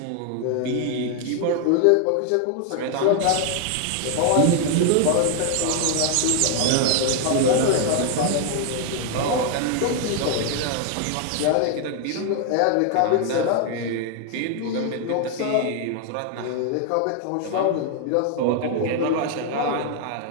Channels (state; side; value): different; both; correlation 0.00